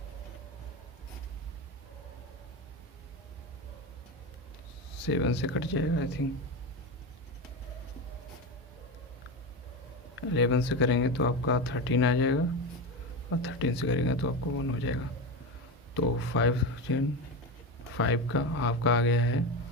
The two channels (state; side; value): normal; both; correlation 0.19